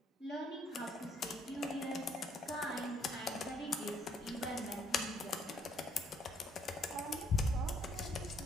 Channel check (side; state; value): both; normal; correlation 0.67